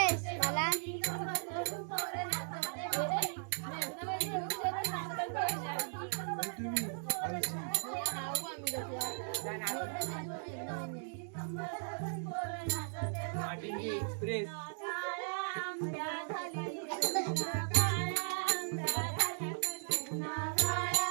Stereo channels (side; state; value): left; silent; digital silence